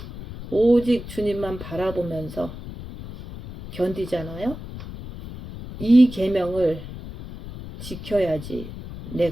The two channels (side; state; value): left; noise; rumble, 12 dB below the sound